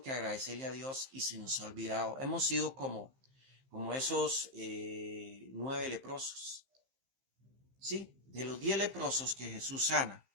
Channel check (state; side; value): late; left; 15 ms